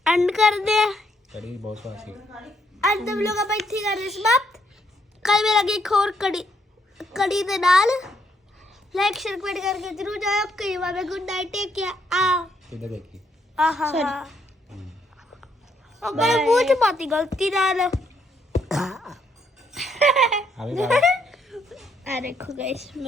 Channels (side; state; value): both; normal; correlation 0.73